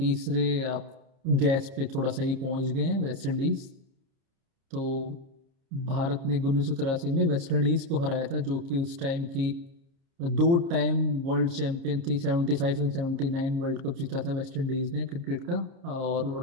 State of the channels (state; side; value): late; left; 30 ms